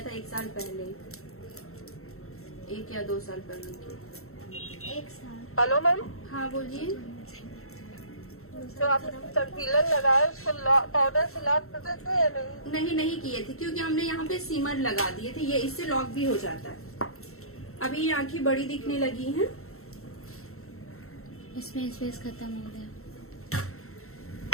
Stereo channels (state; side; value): late; right; 0.63 ms